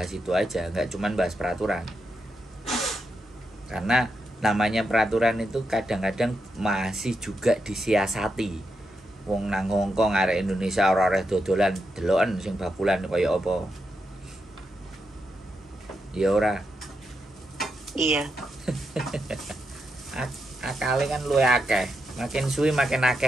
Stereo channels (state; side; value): normal; both; correlation 0.84